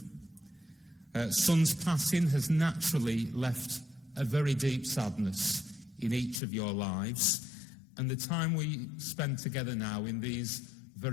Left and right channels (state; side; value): drops out; right; at 6.4 s